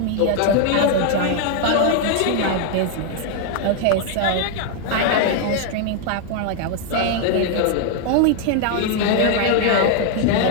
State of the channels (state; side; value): different; both; correlation 0.00